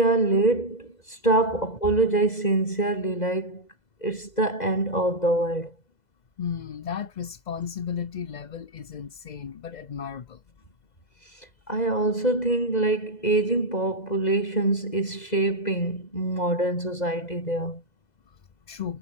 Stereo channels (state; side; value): late; right; 2.0 ms